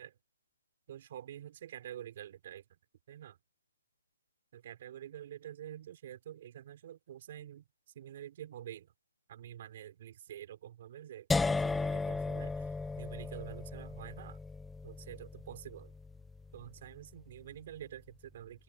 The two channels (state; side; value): normal; both; correlation 0.71